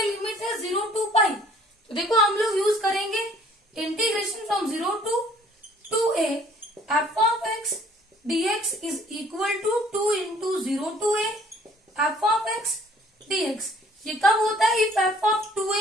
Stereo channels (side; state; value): both; normal; correlation 0.57